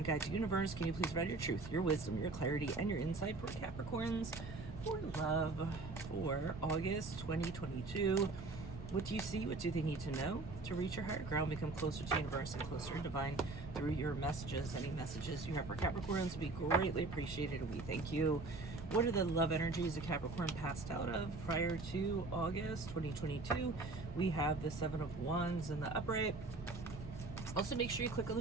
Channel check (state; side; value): quieter; left; 3.4 dB